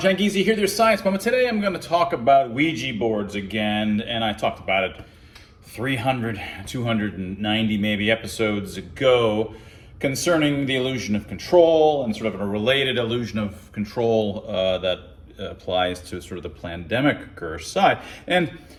here, there's Science Moment. Today I'm going to talk about Ouija boards again, and I talked about it 300, 290 maybe episodes ago concerning the illusion of control and sort of a related illusion of control that applies to sort of the pandemic curse side. And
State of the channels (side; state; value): both; identical; correlation 1.00